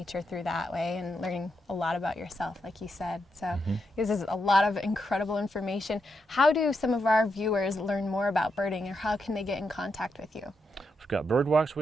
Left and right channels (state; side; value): normal; both; correlation 0.83